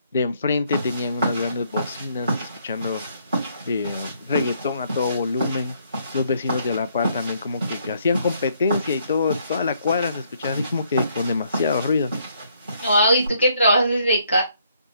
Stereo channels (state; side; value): inverted; both; correlation -0.70